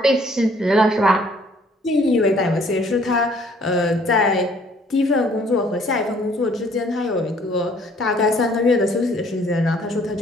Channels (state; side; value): normal; both; correlation 0.60